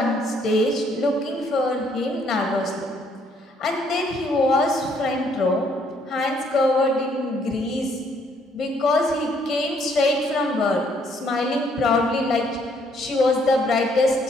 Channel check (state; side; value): normal; both; correlation 0.67